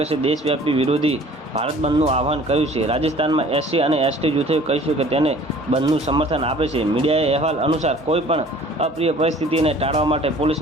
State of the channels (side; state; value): both; normal; correlation 0.50